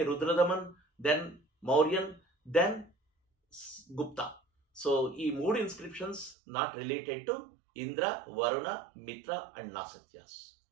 Rudradaman, then Mauryan, then Gupta. So ఈ 3 inscriptions not related to Indra, Varuna, Mitra and Nasatyas.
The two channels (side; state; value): left; drops out; at 6.4 s